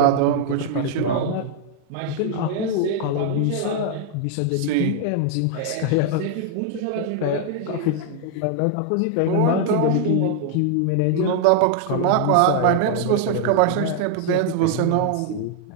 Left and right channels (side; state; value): both; different; correlation 0.00